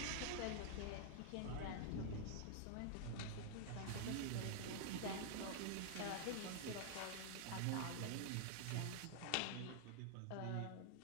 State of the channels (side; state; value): both; different; correlation -0.01